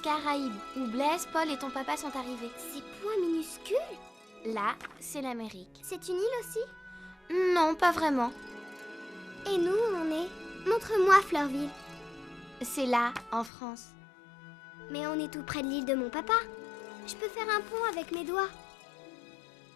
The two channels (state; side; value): drops out; right; at 13.5 s